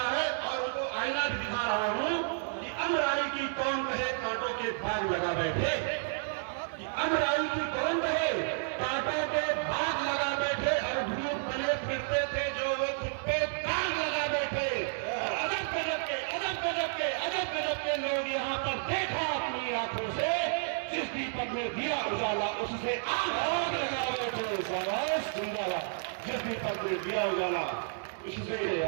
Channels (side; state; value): left; silent; 57 dB below the other